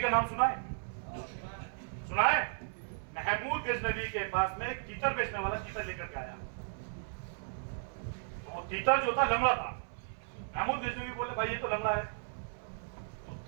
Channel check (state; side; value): silent; left; 54 dB below the other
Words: नाम सुना है? सुना है? महमूद गजनवी के पास में एक तीतर बेचने वाला तीतर लेकर के आया। तो तीतर जो था लंगड़ा था। महमूद गजनवी बोले भाई ये तो लंगड़ा है। तो